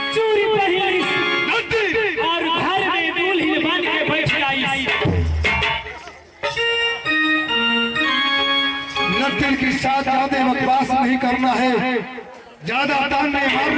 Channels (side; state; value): both; identical; correlation 1.00